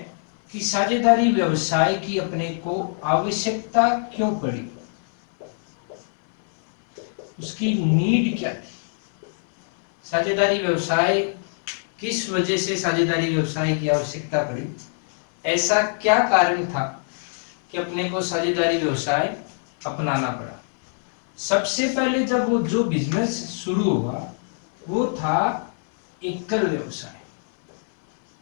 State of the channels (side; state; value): right; silent; 63 dB below the other